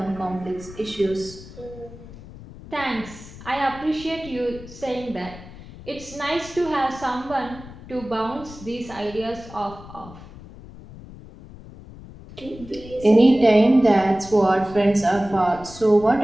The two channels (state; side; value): noise; left; rumble, 17 dB below the sound